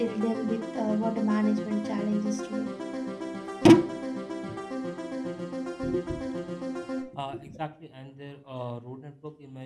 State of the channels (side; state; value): both; identical; correlation 1.00